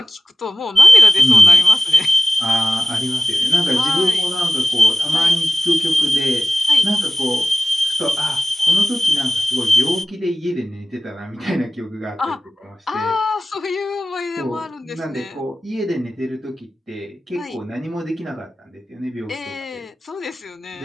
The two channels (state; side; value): normal; both; correlation 0.94